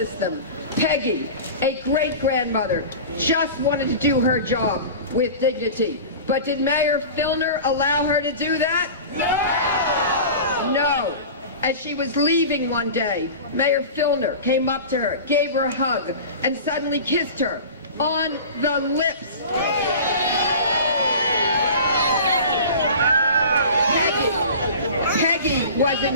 them. Peggy, a great-grandmother, just wanted to do her job with dignity. But did Mayor Filner allow her to do that? No! No. As she was leaving one day, Mayor Filner came up to her, gave her a hug, and suddenly kissed her on the lips. Peggy was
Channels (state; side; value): inverted; both; correlation -0.35